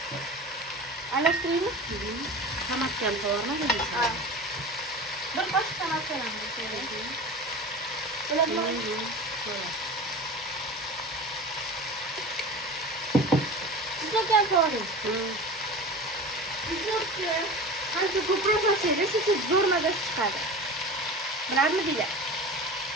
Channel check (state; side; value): normal; both; correlation 0.33